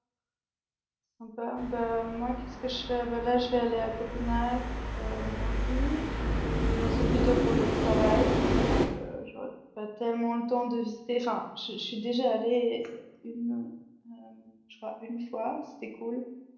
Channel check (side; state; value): both; identical; correlation 1.00